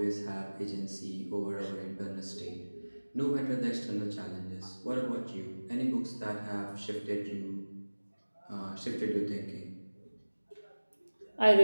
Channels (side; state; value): both; inverted; correlation -1.00